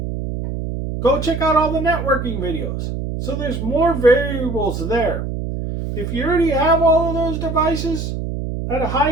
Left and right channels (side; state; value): right; noise; hum, 4 dB below the sound